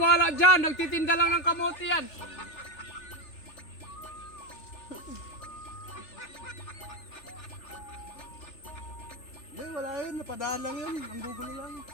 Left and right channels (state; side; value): late; right; 3.4 ms